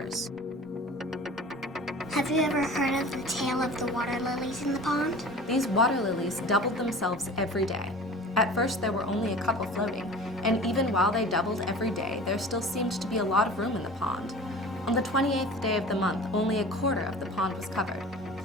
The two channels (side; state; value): both; normal; correlation 0.40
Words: Have you ever heard of the tale of the water lilies in the pond? These water lilies doubled themselves every day. At first, there were only a couple floating, and even while they doubled every day, there still seemed to be a lot of room in the pond. On the 28th day of the month, only a quarter of the pond was covered,